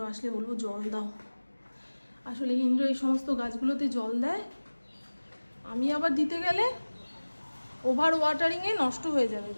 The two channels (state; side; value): inverted; both; correlation -1.00